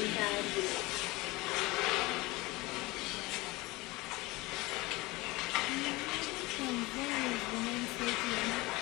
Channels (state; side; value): quieter; right; 22.1 dB